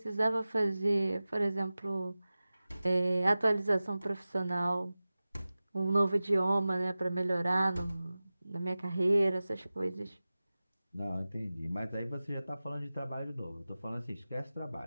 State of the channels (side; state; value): both; inverted; correlation -0.96